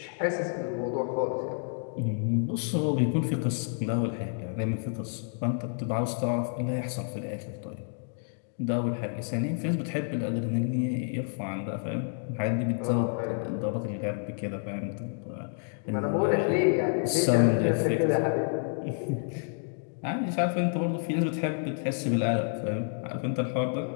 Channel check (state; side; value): silent; right; digital silence